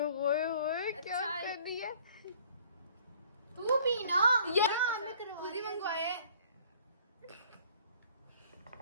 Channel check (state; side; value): inverted; both; correlation -0.55